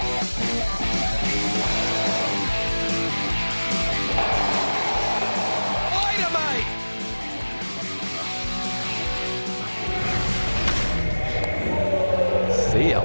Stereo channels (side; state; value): both; inverted; correlation -1.00